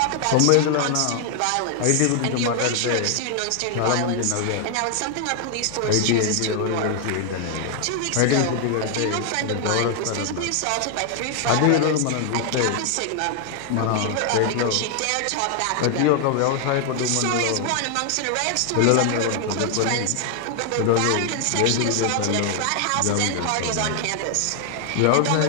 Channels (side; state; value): both; different; correlation 0.00